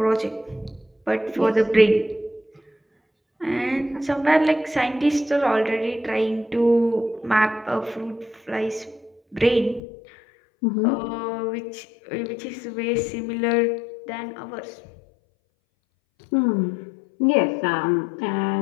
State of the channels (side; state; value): right; drops out; at 9.8 s